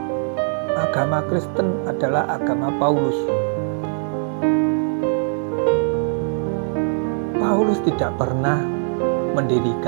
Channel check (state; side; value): silent; left; 65 dB below the other